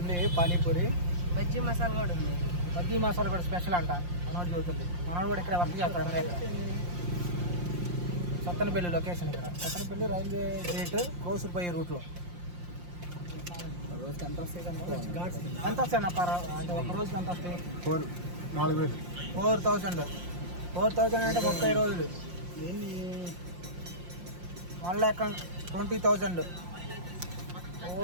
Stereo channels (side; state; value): left; late; 5.7 ms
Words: పానీపూరి, బజ్జీ మసాలా కూడా ఉంది. బజ్జీ మసాలా కూడా స్పెషల్ అంట. మనోడు చదువుతుంది. మనోడు కూడా ఇక్కడ వర్క్ చేస్తాడు అన్నమాట. సత్తెనపల్లి లొకేషన్ ఇక్కడ. సత్తెనపల్లి రైల్వే గేట్ క్రోసూరు పోయే రూట్లో. ఎంత వస్తాయి అంటే ఒక రోజుకి ఎంత వస్తాయి? 4,000. 4,000 అంటే 30 రోజులు. 1,20,000. ఓ